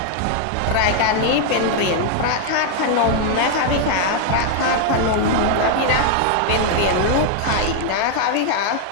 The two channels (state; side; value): different; both; correlation 0.00